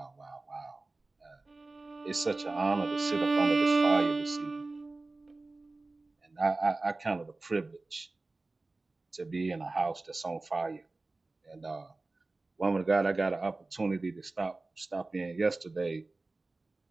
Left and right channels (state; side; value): quieter; left; 3.3 dB